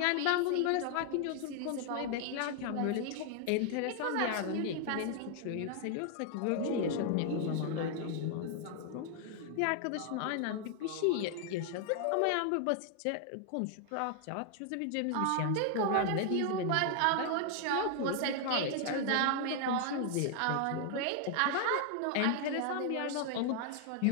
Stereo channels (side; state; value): both; different; correlation 0.00